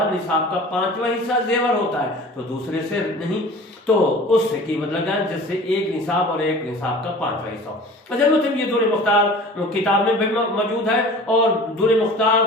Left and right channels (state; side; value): normal; both; correlation 0.43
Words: نصاب کا 5واں حصہ زیور ہوتا ہے تو دوسرے سے نہیں، تو اس سے قیمت لگائیں جس سے ایک نصاب اور ایک نصاب کا 5واں حصہ ہو۔ اصل میں یہ دور مختار کتاب میں بھی موجود ہے، اور دور مختار